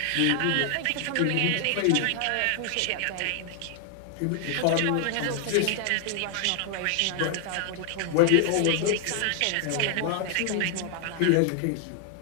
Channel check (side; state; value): both; different; correlation 0.00